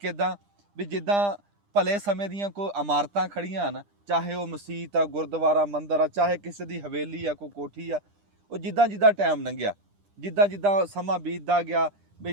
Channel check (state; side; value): late; left; 9.9 ms